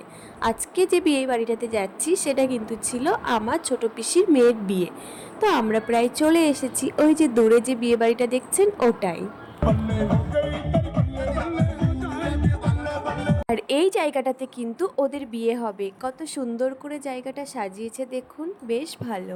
আজকে যে বিয়ে বাড়িটাতে যাচ্ছি সেটা কিন্তু ছিল আমার ছোট পিসির মেয়ের বিয়ে। তো আমরা প্রায় চলে এসেছি, ওই যে দূরে যে বিয়ে বাড়িটা দেখছেন ওটাই। আর এই জায়গাটাতে কিন্তু ওদের বিয়ে হবে। কত সুন্দর করে জায়গাটা সাজিয়েছে দেখুন, বেশ ভালো।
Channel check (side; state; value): both; identical; correlation 1.00